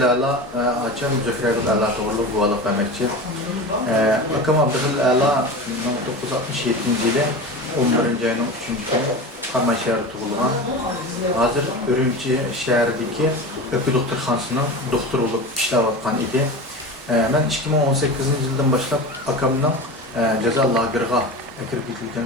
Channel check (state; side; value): normal; both; correlation 0.29